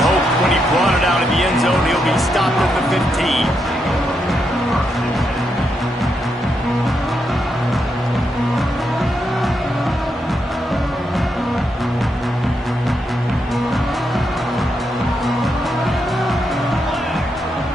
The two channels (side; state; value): both; normal; correlation 0.81